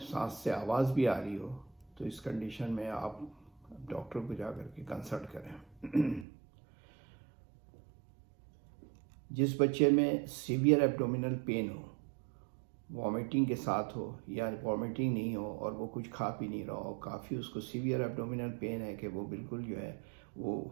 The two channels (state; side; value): drops out; left; at 6.2 s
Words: से आवाज़ भी आ रही हो, तो इस कंडीशन में आप डॉक्टर को जा कर के कंसल्ट करें। जिस बच्चे में सीवियर एब्डोमिनल पेन हो, वॉमिटिंग के साथ हो या वॉमिटिंग नहीं हो और वो कुछ खा पी नहीं रहा हो, काफ़ी उसको सीवियर एब्डोमिनल पेन है कि वो बिल्कुल जो है वो